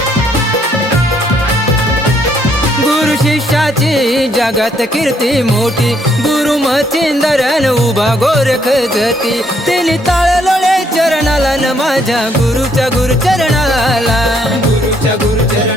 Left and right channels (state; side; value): normal; both; correlation 0.70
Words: गुरु शिष्याची जगात कीर्ती मोठी, गुरु मच्छिंदरन उभा गोरख जती, तिने ताळलोळे चरणाला न माझ्या गुरुच्या गुरुचरणाला, गुरुच्या